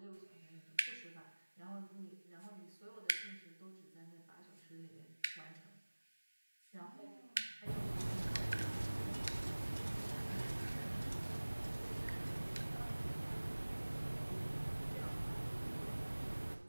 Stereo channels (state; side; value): inverted; both; correlation -1.00